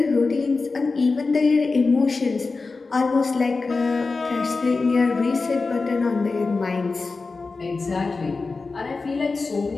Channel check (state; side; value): quieter; right; 4.0 dB